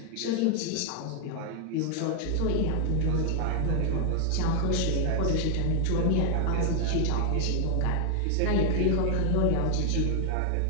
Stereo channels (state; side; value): different; both; correlation 0.00